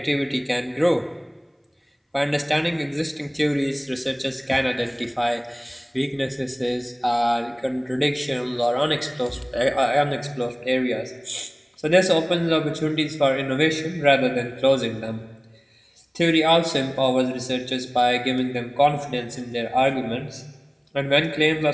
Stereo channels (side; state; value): both; identical; correlation 1.00